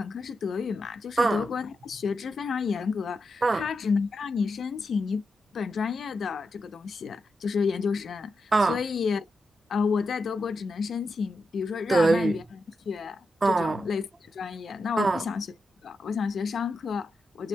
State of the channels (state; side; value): normal; both; correlation 0.87